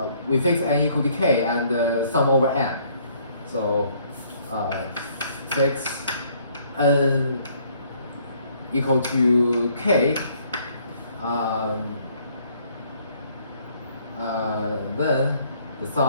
we fix n equal to k and sum over n. So fix n equal to k. Then the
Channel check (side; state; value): both; inverted; correlation -0.63